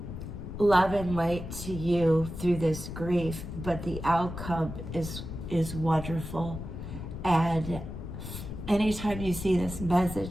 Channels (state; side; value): noise; left; rumble, 8 dB below the sound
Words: love and light to you through this grief, but the outcome is wonderful. And anytime you see this